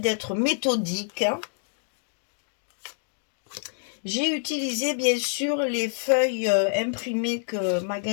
méthodique. J'ai utilisé bien sûr les feuilles imprimées que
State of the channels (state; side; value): silent; right; digital silence